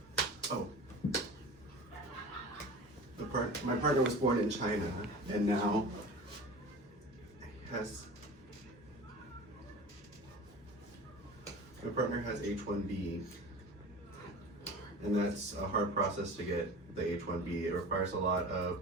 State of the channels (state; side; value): normal; both; correlation 0.36